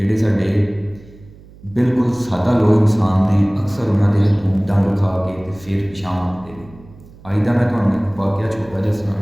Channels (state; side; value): noise; right; hum, 22 dB below the sound